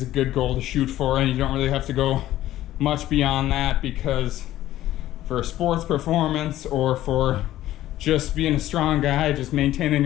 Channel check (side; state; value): right; quieter; 14.0 dB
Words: a good goal to shoot for, and you don't really have to go much beyond that, because for sports performance or for just being a strong guy, just maintaining